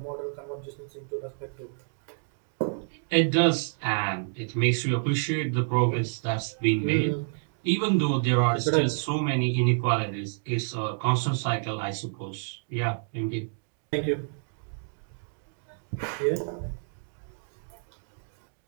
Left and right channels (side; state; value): left; silent; digital silence